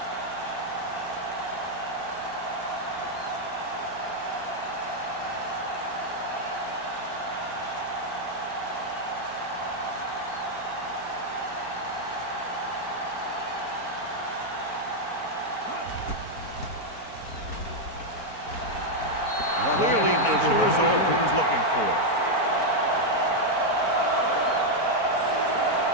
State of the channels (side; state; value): right; late; 4.4 ms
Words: Clearly not the result he was looking for.